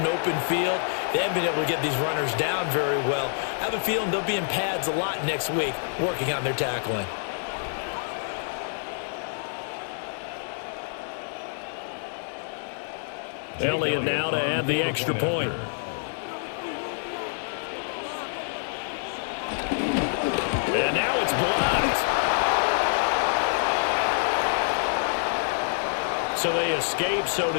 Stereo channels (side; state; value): right; silent; digital silence